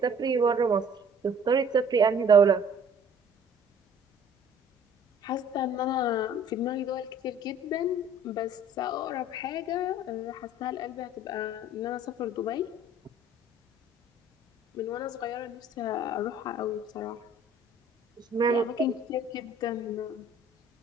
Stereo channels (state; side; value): normal; both; correlation 0.52